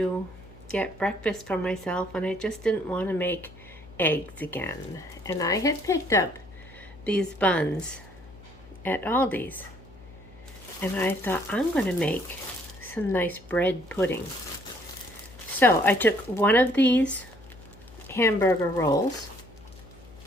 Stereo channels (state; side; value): noise; left; hum, 21 dB below the sound